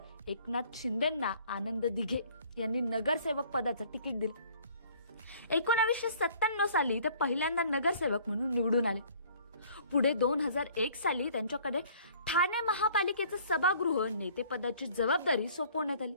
एकनाथ शिंदेंना आनंद दिघे यांनी नगरसेवक पदाचं तिकीट दिलं. 1997 साली ते पहिल्यांदा नगरसेवक म्हणून निवडून आले. पुढे 2001 साली त्यांच्याकडे ठाणे महापालिकेचं सभागृह नेतेपदाची जबाबदारी सोपवण्यात आली.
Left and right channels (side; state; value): both; inverted; correlation -0.55